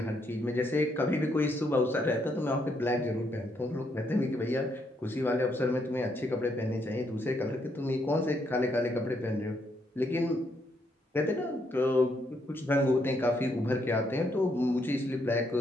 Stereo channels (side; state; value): both; normal; correlation 0.75